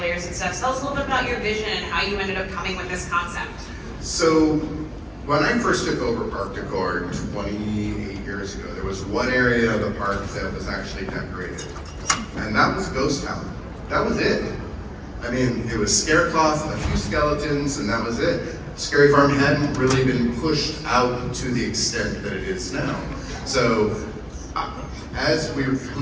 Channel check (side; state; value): both; identical; correlation 1.00